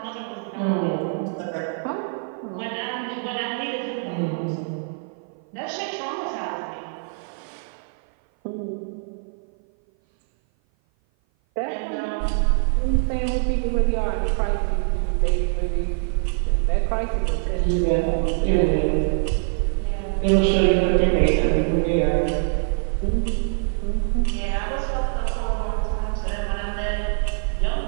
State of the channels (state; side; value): silent; left; 56 dB below the other